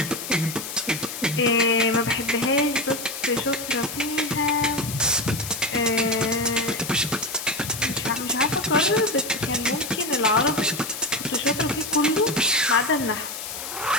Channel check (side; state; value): left; noise; hiss, 8 dB below the sound